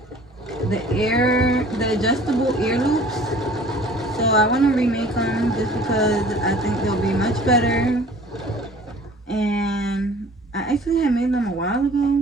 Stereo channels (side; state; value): both; normal; correlation 0.49